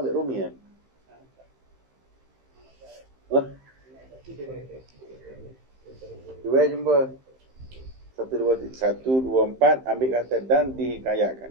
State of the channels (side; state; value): left; late; 15 ms